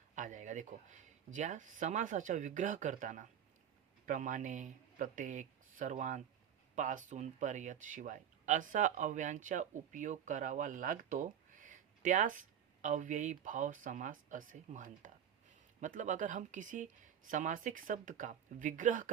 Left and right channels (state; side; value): quieter; left; 9.2 dB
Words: आ जाएगा। देखो, ज्या समासाचा विग्रह करताना प्रमाणे, प्रत्येक, सर्वांत, पासून, पर्यंत, शिवाय असा अव्ययांचा उपयोग करावा लागतो, त्यास अव्ययी भाव समास असे म्हणतात। मतलब अगर हम किसी समासिक शब्द का विग्रह